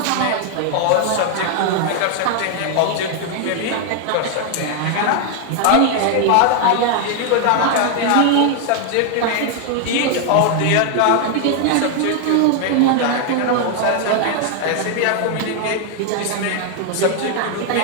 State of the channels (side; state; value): both; different; correlation 0.00